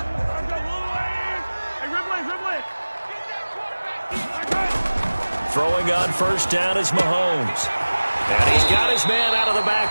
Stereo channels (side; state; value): both; inverted; correlation -1.00